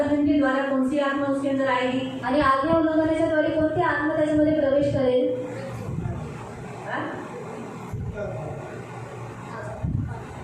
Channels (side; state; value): both; identical; correlation 1.00